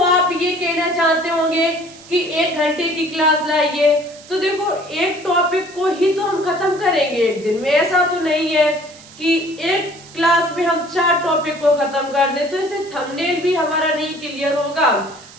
आप ये कहना चाहते होंगे कि 1 घंटे की क्लास लाइए, तो देखो एक टॉपिक को ही तो हम खत्म करेंगे एक दिन में, ऐसा तो नहीं है कि एक क्लास में हम 4 टॉपिक को खत्म कर दें, तो इससे थंबनेल भी हमारा नहीं क्लियर होगा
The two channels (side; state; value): right; noise; hiss, 21 dB below the sound